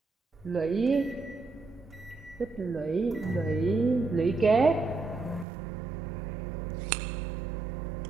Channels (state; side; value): drops out; left; at 5.5 s